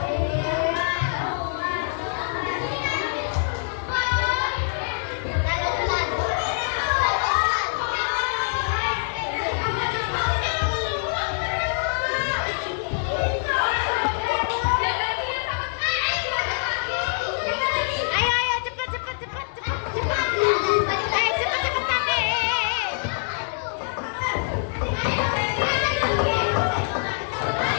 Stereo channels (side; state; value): right; silent; digital silence